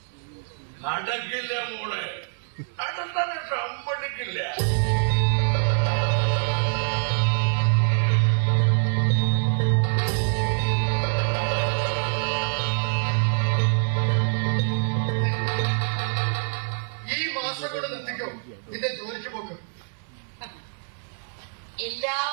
നടക്കില്ല മോളെ, അതെന്താണ് സമ്മതിക്കില്ല. നിന്റെ ജോലിക്ക് പോക്ക് എല്ലാ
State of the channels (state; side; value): silent; left; 62 dB below the other